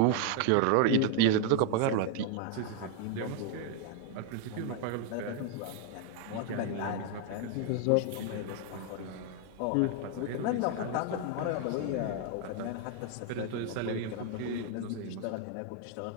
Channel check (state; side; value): different; both; correlation 0.01